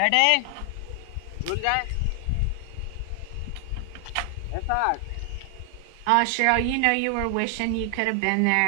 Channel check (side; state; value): both; different; correlation 0.00